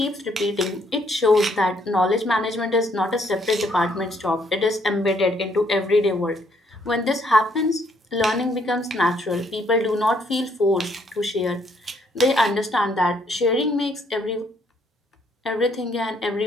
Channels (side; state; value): both; normal; correlation 0.69